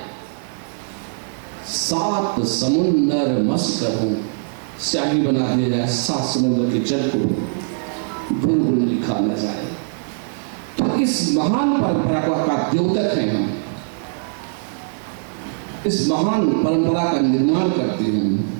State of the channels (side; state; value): left; silent; digital silence